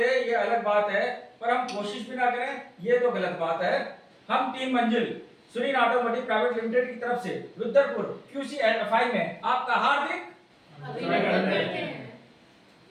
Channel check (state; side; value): identical; both; correlation 1.00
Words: ये अलग बात है, पर हम कोशिश भी ना करें ये तो गलत बात है। हम टीम मंजिल सुनील ऑटोमोटिव प्राइवेट लिमिटेड की तरफ से रुद्रपुर QC एंड FI में आपका हार्दिक अभिनंदन करते हैं।